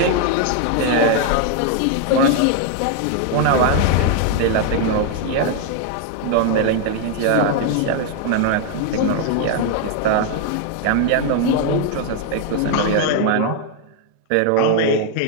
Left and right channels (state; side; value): different; both; correlation 0.00